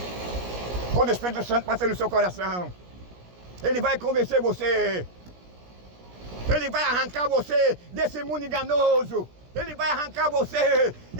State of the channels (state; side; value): late; left; 17 ms